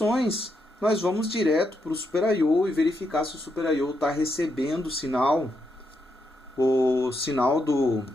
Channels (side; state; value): both; normal; correlation 0.81